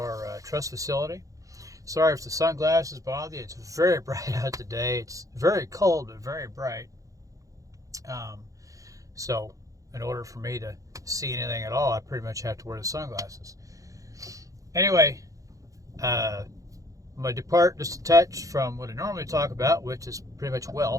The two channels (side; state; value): left; late; 0.16 ms